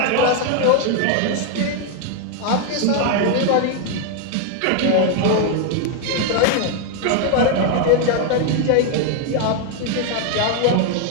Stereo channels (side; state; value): both; different; correlation 0.01